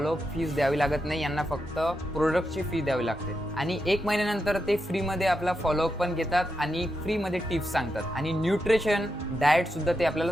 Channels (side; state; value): both; normal; correlation 0.86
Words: फीस द्यावी लागत नाही. यांना फक्त प्रोडक्टची फी द्यावी लागते आणि 1 महिन्यानंतर ते फ्रीमध्ये आपला फॉलोअप पण घेतात आणि फ्रीमध्ये टिप्स सांगतात आणि न्यूट्रिशन डाएट सुद्धा ते आपल्याला